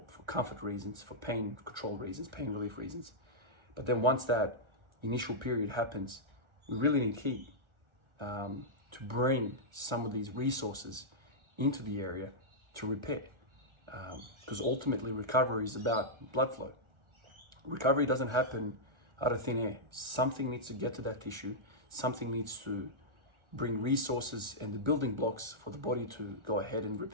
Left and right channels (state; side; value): late; left; 1.4 ms